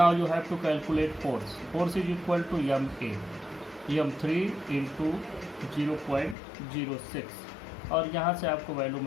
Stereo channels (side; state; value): right; drops out; at 6.4 s